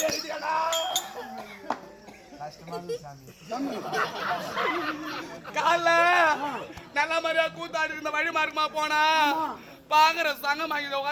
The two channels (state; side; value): identical; both; correlation 1.00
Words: கால நல்ல மாதிரியா கூத்தாடி இருந்த வழி மார்க்கமா போனா பாக்குற சங்கம் வாங்கி